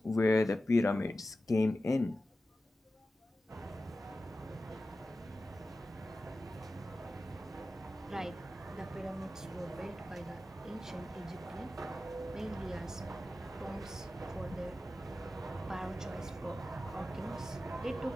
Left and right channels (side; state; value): both; normal; correlation 0.93